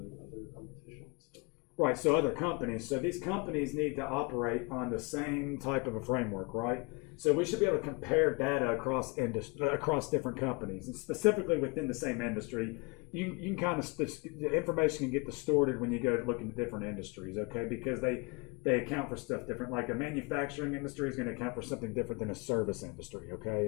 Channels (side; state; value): right; quieter; 28.9 dB